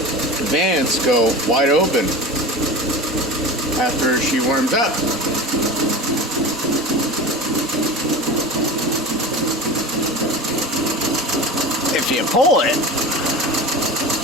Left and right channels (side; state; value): both; normal; correlation 0.31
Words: Advance go wide open after she warms up. If you pull them,